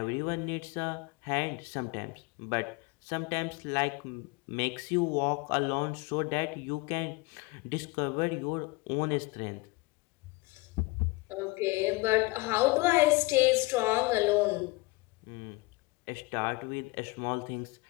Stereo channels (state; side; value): quieter; right; 23.6 dB